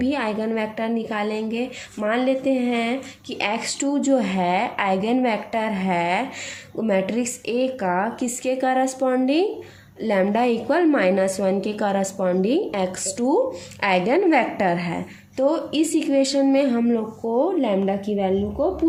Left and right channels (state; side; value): identical; both; correlation 1.00